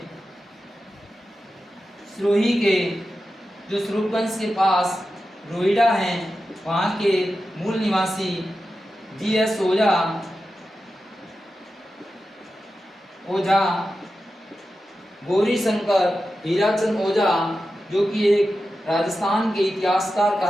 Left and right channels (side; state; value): both; normal; correlation 0.91